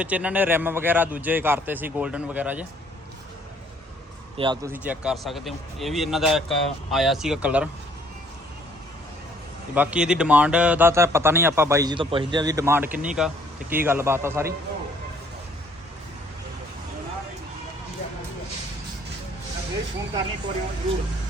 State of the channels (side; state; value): both; normal; correlation 0.61